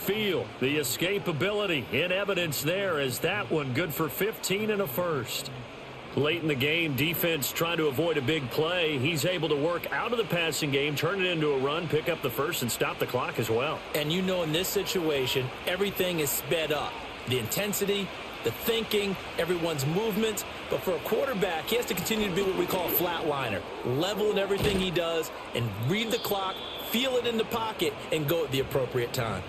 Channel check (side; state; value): both; identical; correlation 1.00